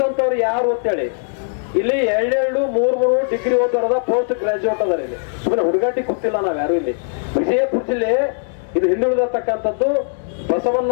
ಯಾರು ಅಂತೇಳಿ. ಇಲ್ಲಿ 2-3 ಡಿಗ್ರಿ ಓದೋರದ ಪೋಸ್ಟ್ ಗ್ರಾಜುಯೇಟ್ ಅದಾರ. ಇಲ್ಲಿ ಸುಮ್ಮನೆ ಹುಡುಗಾಟಿ ಗೊತ್ತಿಲ್ಲ ನಾವ್ ಯಾರು. ಇಲ್ಲಿ ವಿಜಯಪುರ ಜಿಲ್ಲೆ ಇದು ಹಿಂದುಳಿದತಕ್ಕಂಥದ್ದು,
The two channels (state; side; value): silent; right; 66 dB below the other